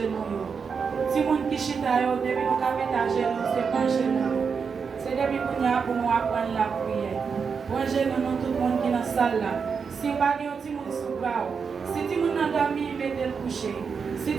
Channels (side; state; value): left; quieter; 5.8 dB